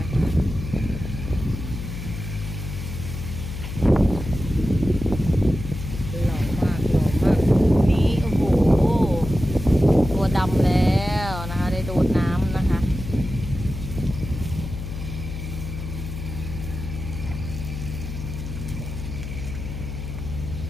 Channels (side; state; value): left; noise; hum, 7 dB below the sound